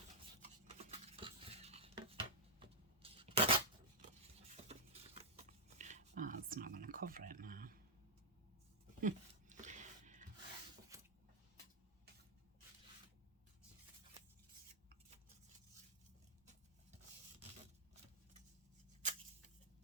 Oh, it's not going to cover it now.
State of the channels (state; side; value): normal; both; correlation -0.08